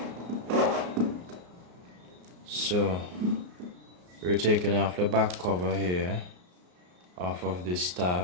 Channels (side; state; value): left; late; 34 ms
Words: So we're taking off the back cover here off of this